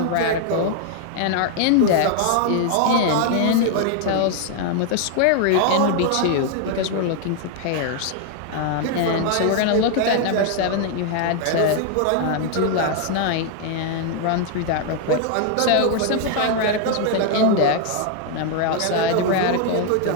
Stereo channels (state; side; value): different; both; correlation 0.00